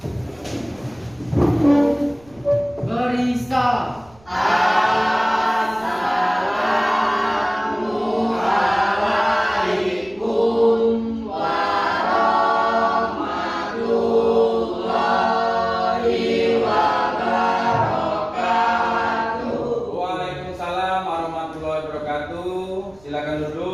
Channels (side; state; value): right; noise; rumble, 28 dB below the sound